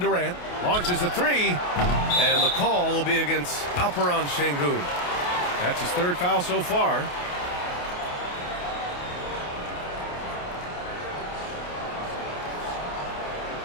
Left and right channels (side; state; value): right; late; 28 ms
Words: Launches a 3. And the call will be against Alperen Şengün. That's his third foul so far.